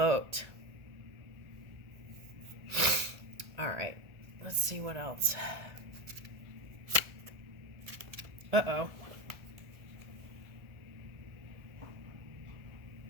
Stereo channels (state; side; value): late; left; 1.4 ms